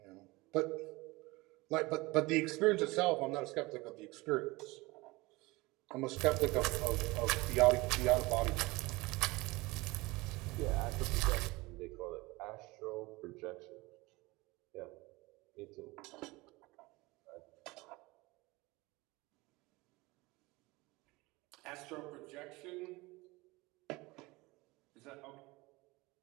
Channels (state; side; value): quieter; left; 22.3 dB